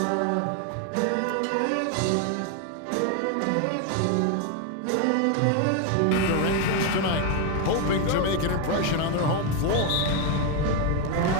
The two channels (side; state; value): both; different; correlation 0.01